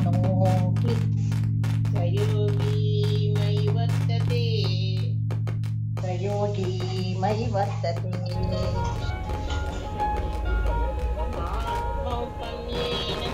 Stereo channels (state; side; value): identical; both; correlation 1.00